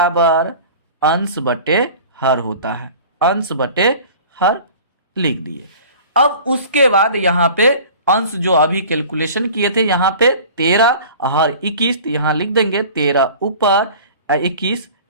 अंश बटे हर होता है, अंश बटे हर लिख दिए। अब उसके बाद यहाँ पे अंश जो अभी कैलकुलेशन किए थे, यहाँ पे 13 हर 21, तो यहाँ लिख देंगे 13 ऊपर 21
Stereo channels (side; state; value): both; inverted; correlation -0.43